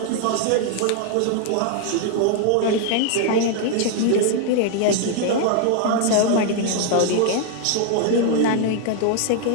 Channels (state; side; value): different; both; correlation 0.00